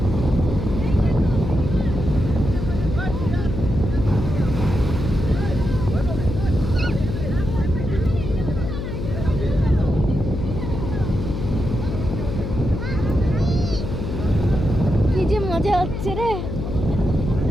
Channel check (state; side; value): noise; left; hum, 4 dB below the sound